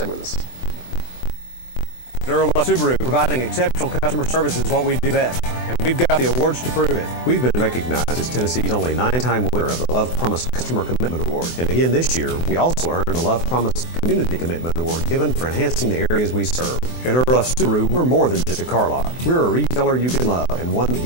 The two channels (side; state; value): right; late; 24 ms